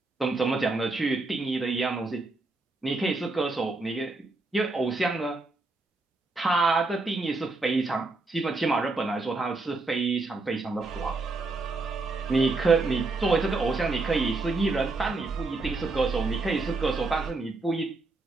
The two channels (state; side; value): quieter; left; 3.4 dB